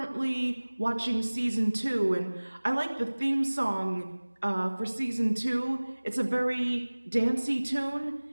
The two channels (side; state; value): both; inverted; correlation -1.00